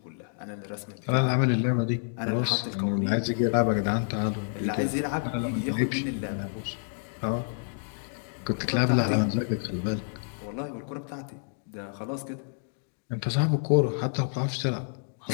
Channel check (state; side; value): silent; right; digital silence